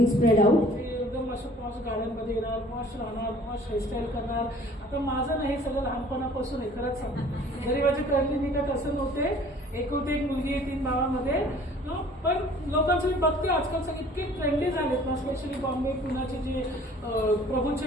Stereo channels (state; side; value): normal; both; correlation 0.52